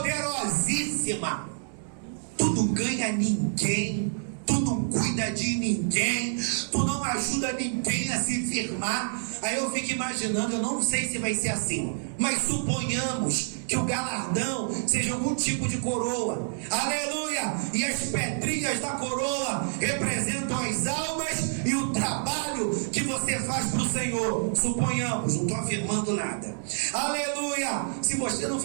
Tu não ganha ninguém, tu não cuida de ninguém, tu não ajuda ninguém a se firmar. Aí eu fico imaginando, eu não sei se vai ser assim, mas suponhamos que o galardão seja algum tipo de coroa. Aleluia! E as pedrinhas da coroa representam as almas e o trabalho que você faz para o Senhor. Suponhamos, não estou afirmando nada. Aleluia! Se você não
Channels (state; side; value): silent; left; 59 dB below the other